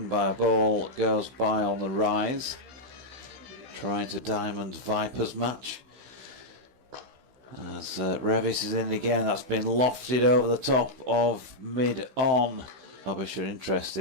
by a ball that goes by on the rise. Trying to Diamond Vipers match. As Revis is in again, that's been lofted over the top of mid-on. Derbyshire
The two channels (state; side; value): late; left; 16 ms